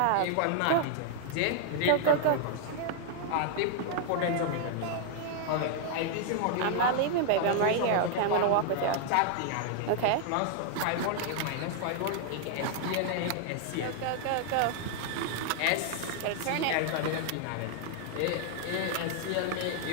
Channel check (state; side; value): different; both; correlation 0.00